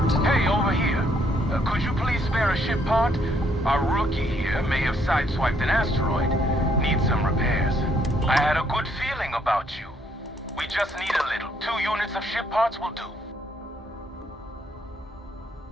Hey, over here. Could you please spare a ship part? Our rookie here may have sideswiped an asteroid. Needs some repairs. I had a good feeling about you. We just need a little. 2 units of ship parts will do.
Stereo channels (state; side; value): normal; both; correlation 0.70